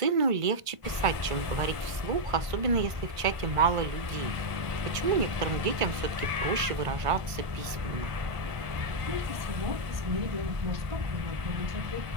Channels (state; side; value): late; left; 1.5 ms